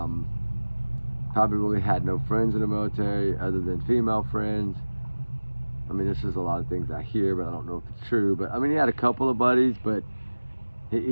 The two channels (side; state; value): both; inverted; correlation -1.00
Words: really had no friends in the military other than female friends. I mean, this is a lot of things I hear, but I don't know if it's true. But I mean, he had a couple of buddies, but